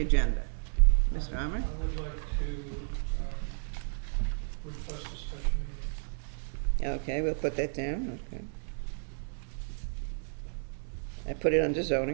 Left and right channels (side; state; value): left; silent; digital silence